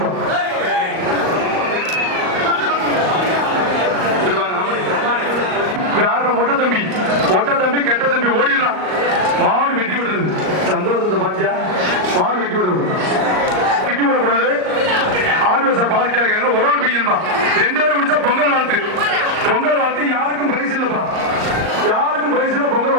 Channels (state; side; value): late; left; 38 ms